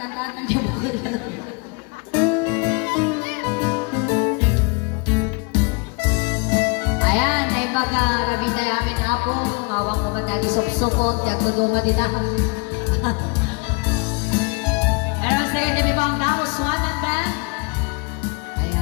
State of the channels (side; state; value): right; quieter; 30.4 dB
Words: niyo po. Ayan, ay baga rabi tayo amin apo. Ngawang ko matagi sop-sopot. Yang tuduma dita. Pero sige, dami po ang tao. Swan and band.